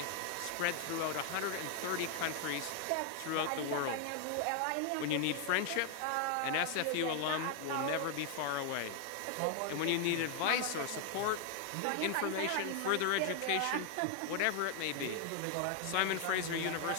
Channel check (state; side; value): different; both; correlation 0.00